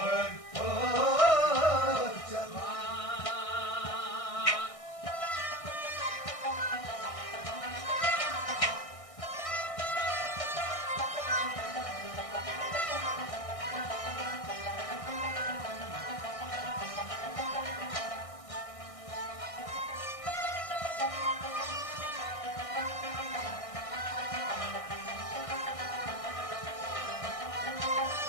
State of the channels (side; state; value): right; late; 1.6 ms